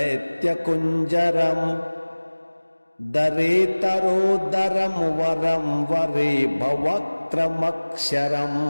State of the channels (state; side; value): inverted; both; correlation -1.00